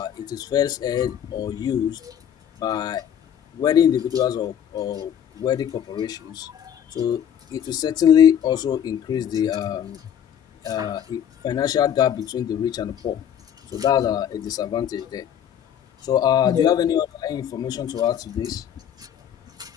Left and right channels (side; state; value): right; quieter; 9.3 dB